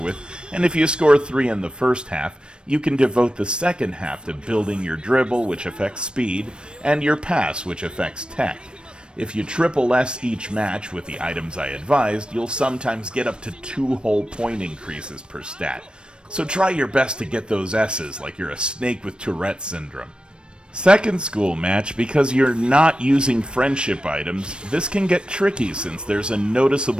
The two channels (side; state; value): left; late; 0.054 ms